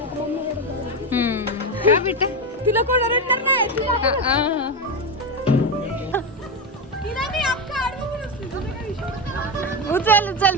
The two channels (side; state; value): both; normal; correlation 0.13